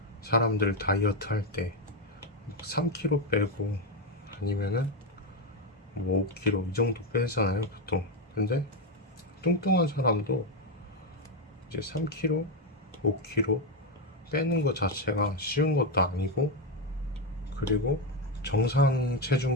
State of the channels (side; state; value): both; normal; correlation 0.07